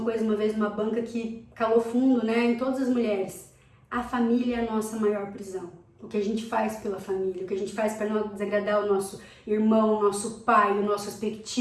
coisa uma vez numa banca que calou fundo, né, em todas as mulheres. A família é a nossa maior prisão. O que a gente faz pela família, o que a gente faz para não desagradar o nosso irmão, o nosso pai, o nosso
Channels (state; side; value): identical; both; correlation 1.00